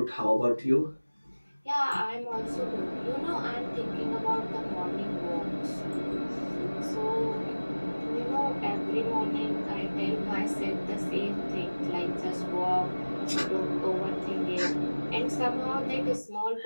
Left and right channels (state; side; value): inverted; both; correlation -1.00